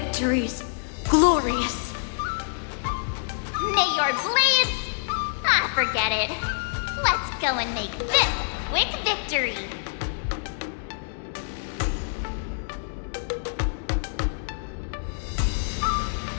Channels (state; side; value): silent; right; digital silence